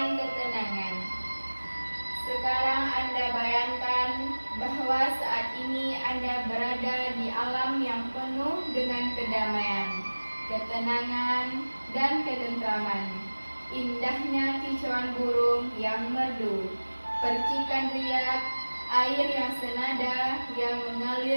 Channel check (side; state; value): both; inverted; correlation -1.00